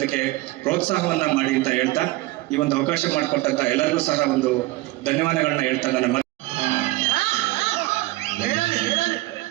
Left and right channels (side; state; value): left; quieter; 19.4 dB